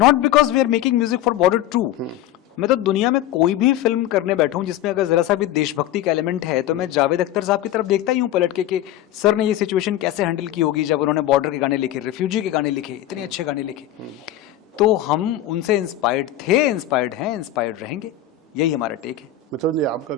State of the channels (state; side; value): quieter; right; 12.2 dB